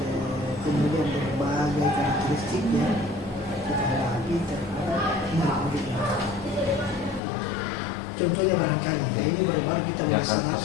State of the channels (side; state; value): right; drops out; at 7.2 s